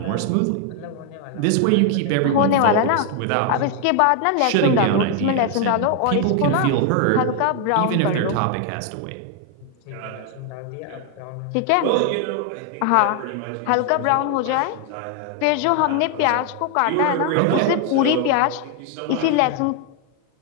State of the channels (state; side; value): different; both; correlation 0.00